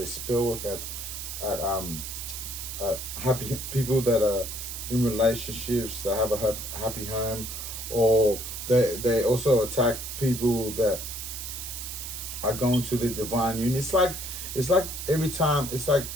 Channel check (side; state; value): right; noise; hiss, 7 dB below the sound